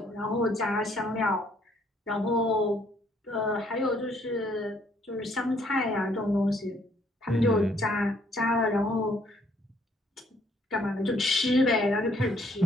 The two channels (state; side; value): normal; both; correlation 0.66